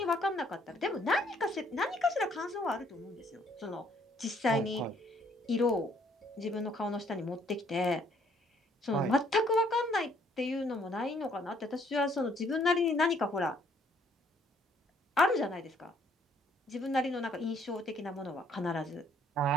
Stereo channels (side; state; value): both; normal; correlation 0.65